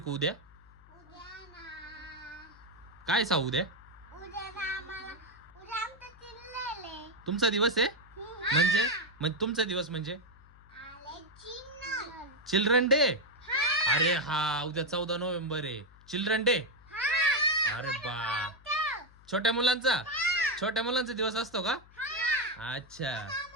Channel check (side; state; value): left; noise; hum, 24 dB below the sound